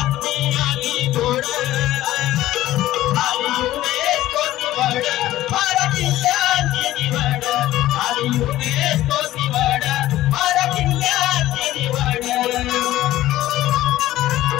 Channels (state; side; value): quieter; right; 14.9 dB